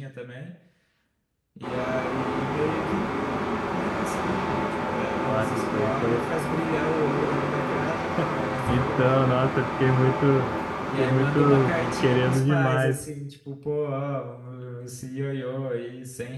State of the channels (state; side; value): identical; both; correlation 1.00